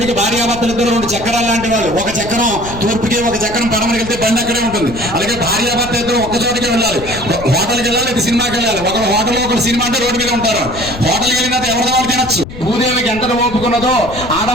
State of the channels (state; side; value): noise; left; rumble, 12 dB below the sound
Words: భార్యాభర్తలు ఇద్దరు 2 చక్రాలు లాంటి వాళ్ళు. ఒక చక్రం తూర్పుకి, ఒక చక్రం పడమరికి వెళ్తే బండి అక్కడే ఉంటుంది. అలాగే భార్యాభర్త ఇద్దరు ఒక్క చోటికి వెళ్ళాలి. హోటల్కి వెళ్ళాలి, ఇది సినిమాకి వెళ్ళాలి. ఒకరు హోటల్లో, ఒకరు సినిమా అంటే రోడ్డు మీద ఉంటారు. హోటల్కి వెళ్ళిన ఎవరి వాళ్ళు తినచ్చు. భూదేవికి ఎంత ఓపుకున్నదో